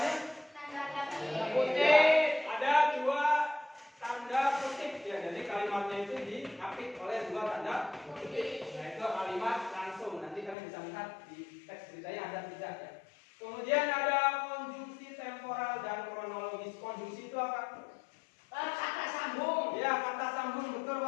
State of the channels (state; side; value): drops out; right; at 10.6 s